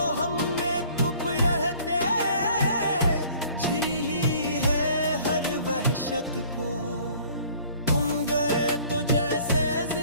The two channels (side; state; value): both; inverted; correlation -0.53